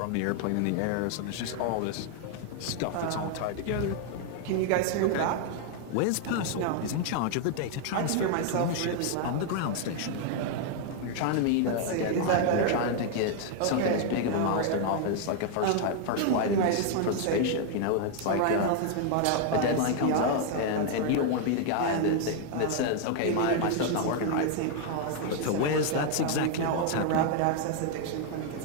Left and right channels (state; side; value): different; both; correlation 0.00